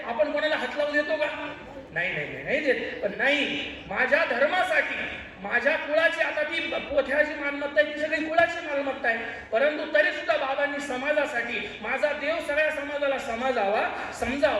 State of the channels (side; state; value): both; identical; correlation 1.00